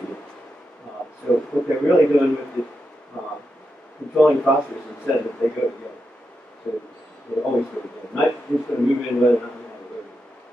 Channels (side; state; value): both; normal; correlation 0.87